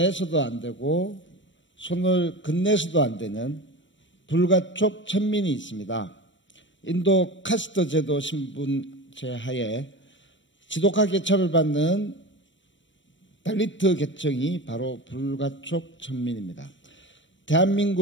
안 되고 손을 건네서도 안 되는 불가촉 천민이 있습니다. 인도 카스트 제도 신분제 하에 지독하게 처벌받는 달리트 계층이 바로 불가촉 천민입니다.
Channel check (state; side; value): late; right; 0.54 ms